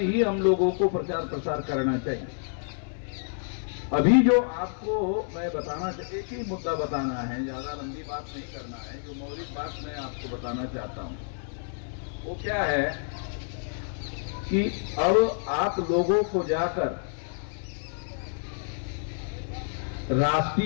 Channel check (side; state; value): right; silent; digital silence